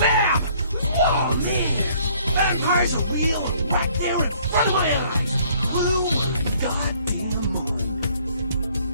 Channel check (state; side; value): inverted; both; correlation -0.60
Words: Oh, man! Vampires are real right there in front of my eyes! Blue goddamn moon.